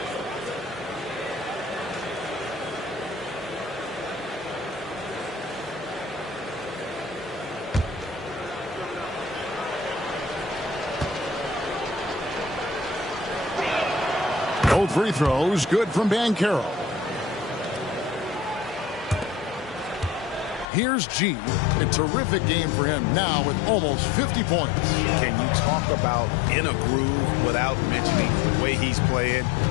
Both free throws good from Banchero. Here's G. A terrific game for him now with almost 50 points. Can you talk about in a groove without mentioning the way he's playing?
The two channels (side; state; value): right; drops out; at 20.7 s